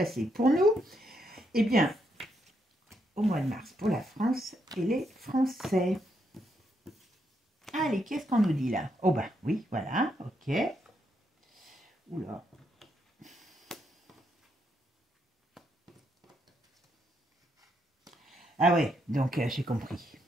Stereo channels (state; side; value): normal; both; correlation 0.78